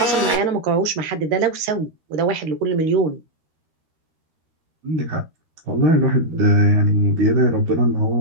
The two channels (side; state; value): left; late; 13 ms